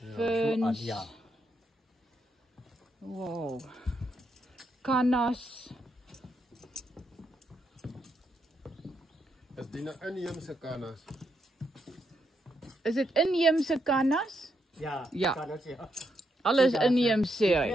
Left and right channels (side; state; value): both; normal; correlation 0.80